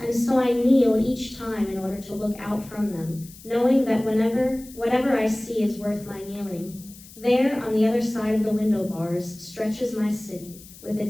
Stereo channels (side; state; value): left; noise; hiss, 20 dB below the sound